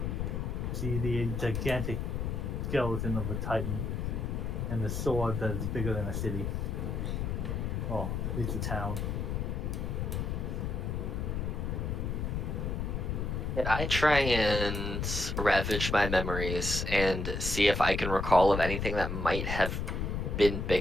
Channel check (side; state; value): left; noise; rumble, 2 dB below the sound